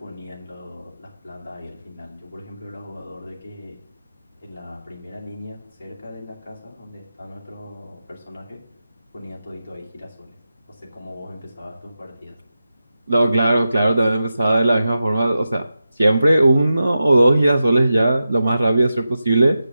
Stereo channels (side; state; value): both; inverted; correlation -0.91